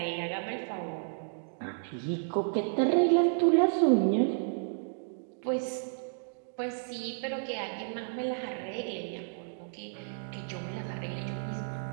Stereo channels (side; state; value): left; silent; digital silence